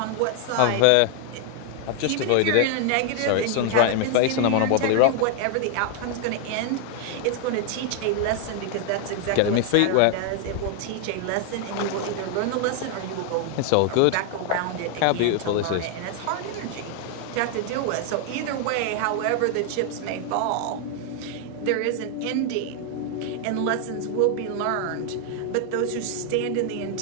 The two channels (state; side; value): different; both; correlation 0.00